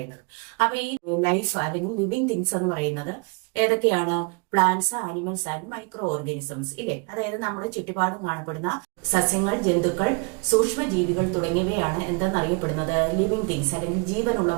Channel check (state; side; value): quieter; left; 32.7 dB